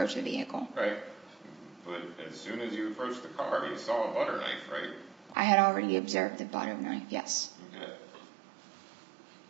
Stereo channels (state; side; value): drops out; left; at 5.4 s